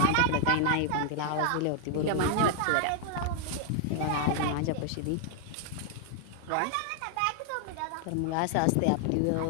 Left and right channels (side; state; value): both; different; correlation 0.00